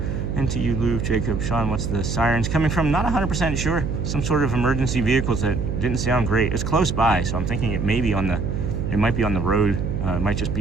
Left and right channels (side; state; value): right; noise; hum, 2 dB below the sound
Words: And to you, Lou, Jacob, Sean, what's the sirens coming from? Not 100% sure. Some sort of emergency vehicles that didn't sound great. It's close by, so I'm thinking it might be on the road. It might just